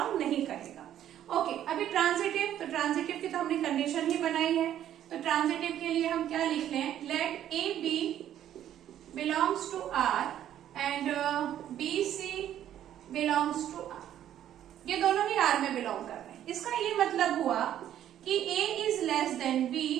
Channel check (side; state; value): left; quieter; 11.2 dB